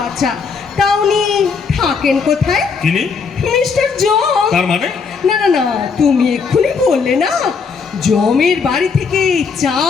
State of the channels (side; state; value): right; quieter; 5.4 dB